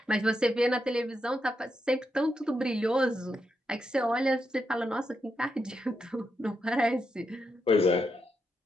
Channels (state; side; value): normal; both; correlation 0.83